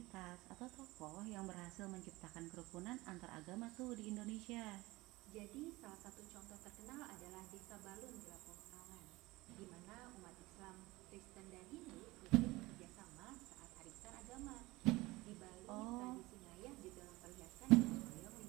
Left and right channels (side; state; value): left; quieter; 20.8 dB